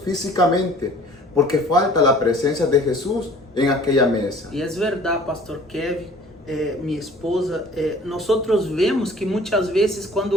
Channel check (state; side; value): normal; both; correlation 0.50